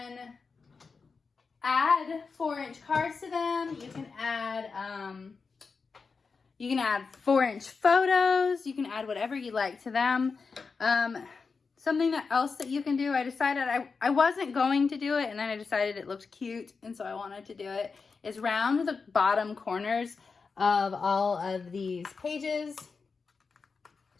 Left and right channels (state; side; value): quieter; right; 4.8 dB